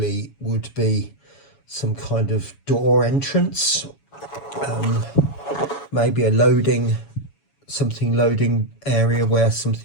would be some kind of door entrance, maybe a loading area where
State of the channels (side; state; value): right; late; 7.1 ms